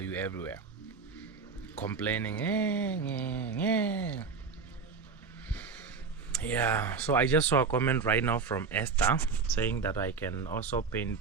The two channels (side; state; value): left; quieter; 5.2 dB